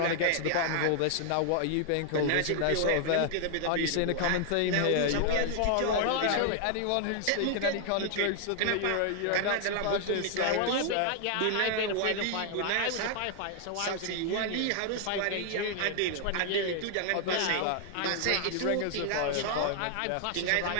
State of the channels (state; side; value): different; both; correlation 0.00